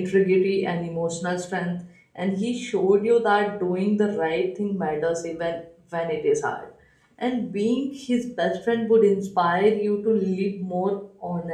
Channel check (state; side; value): identical; both; correlation 1.00